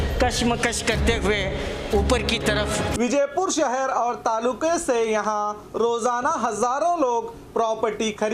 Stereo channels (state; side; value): identical; both; correlation 1.00